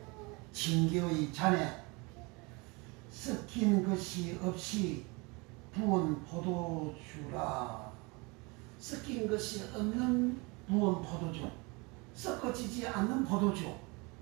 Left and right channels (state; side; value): quieter; left; 27.7 dB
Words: 징계의 잔에 섞인 것이 없이 부은 포도주라. 섞인 것이 없는 부은 포도주, 섞어지지 않는 포도주,